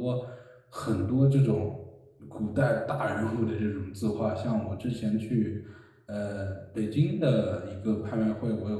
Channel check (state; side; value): identical; both; correlation 1.00